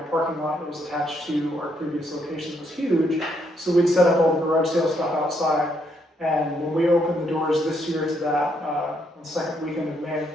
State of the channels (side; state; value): both; normal; correlation 0.74